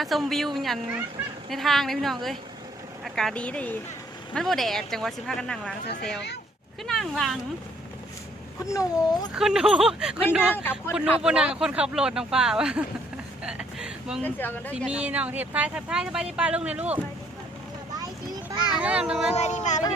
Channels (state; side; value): normal; both; correlation 0.65